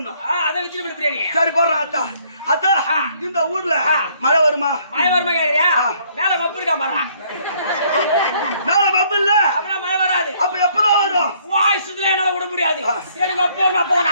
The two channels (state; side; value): inverted; both; correlation -0.64